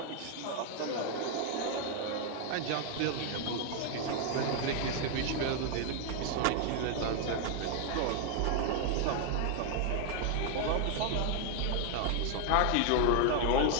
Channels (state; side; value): different; both; correlation 0.00